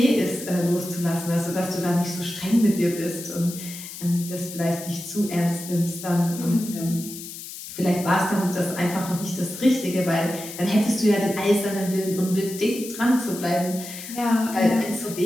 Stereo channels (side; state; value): left; noise; hiss, 11 dB below the sound